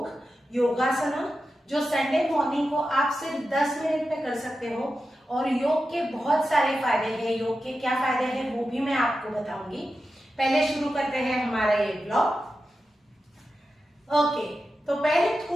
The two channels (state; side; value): normal; both; correlation 0.91